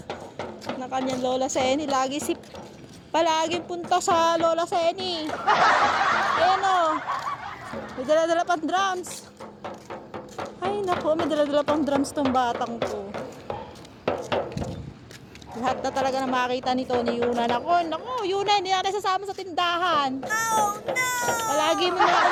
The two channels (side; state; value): both; identical; correlation 1.00